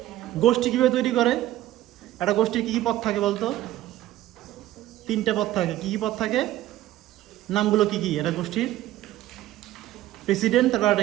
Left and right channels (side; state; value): left; quieter; 14.5 dB